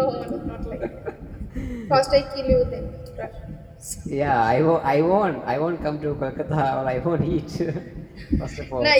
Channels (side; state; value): both; identical; correlation 1.00